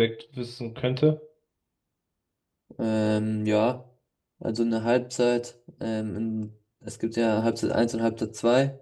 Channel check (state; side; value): identical; both; correlation 1.00